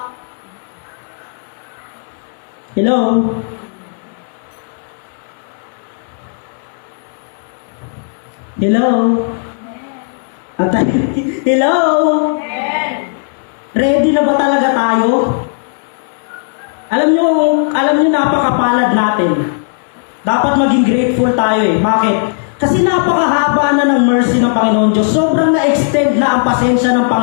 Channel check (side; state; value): right; silent; digital silence